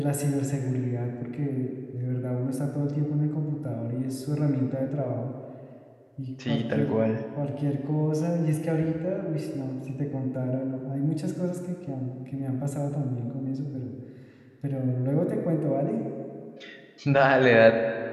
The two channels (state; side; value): identical; both; correlation 1.00